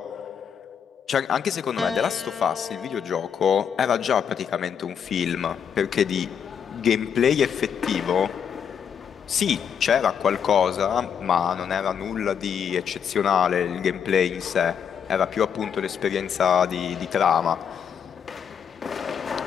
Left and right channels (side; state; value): right; quieter; 7.7 dB